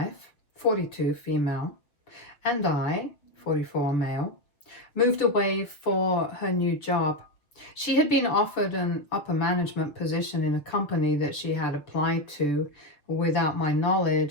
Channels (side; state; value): right; late; 6.6 ms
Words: 42 female, and I, 44 male, moved away for her new job. She had been offered an upper management position in a company that she had applied to without my